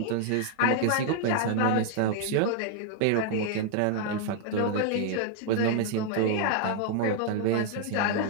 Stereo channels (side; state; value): both; different; correlation 0.00